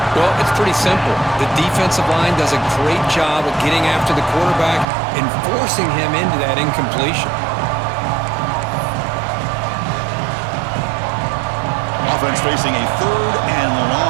Well, it's pretty simple. The defensive line does a great job of getting after the quarterback and forcing him into that incompletion. Offense facing a 3rd and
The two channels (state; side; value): drops out; left; at 4.9 s